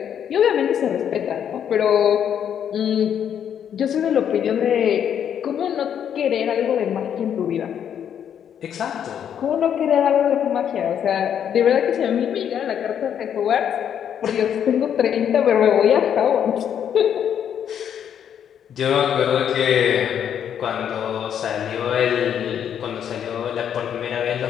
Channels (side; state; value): right; quieter; 8.9 dB